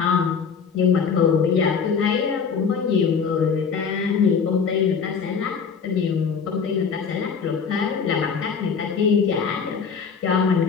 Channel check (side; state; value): right; quieter; 6.1 dB